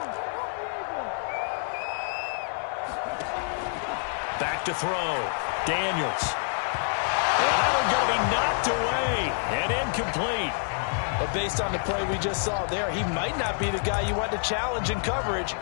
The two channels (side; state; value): right; silent; 60 dB below the other